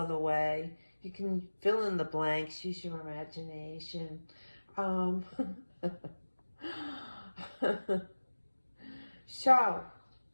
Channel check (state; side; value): inverted; both; correlation -1.00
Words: way. You can fill in the blanks, use your imagination. So,